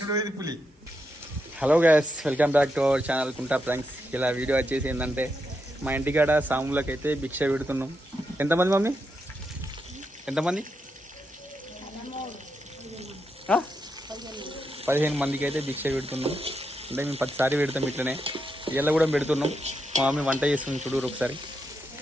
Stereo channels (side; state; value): both; normal; correlation 0.83